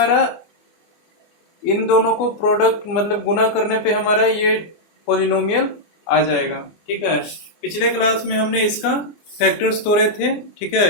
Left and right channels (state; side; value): late; right; 24 ms